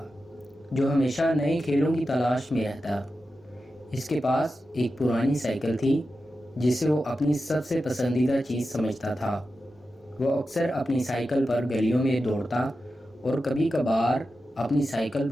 جو ہمیشہ نئے کھیلوں کی تلاش میں رہتا۔ اس کے پاس ایک پرانی سائیکل تھی جسے وہ اپنی سب سے پسندیدہ چیز سمجھتا تھا۔ وہ اکثر اپنی سائیکل پر گلیوں میں دوڑتا اور کبھی کبھار اپنی سائیکل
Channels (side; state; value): both; normal; correlation 0.91